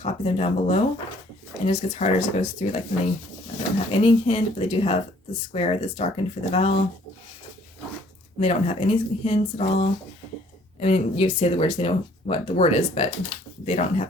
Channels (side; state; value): both; normal; correlation 0.60